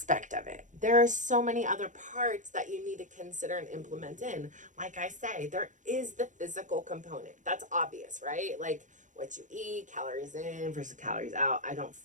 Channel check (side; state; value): left; late; 0.36 ms